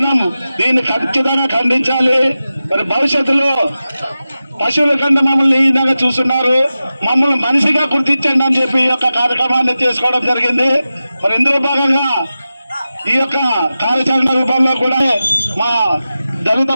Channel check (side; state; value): both; inverted; correlation -0.94